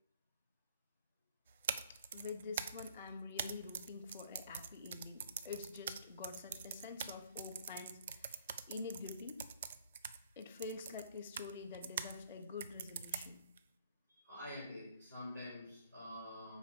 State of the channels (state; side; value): inverted; both; correlation -0.59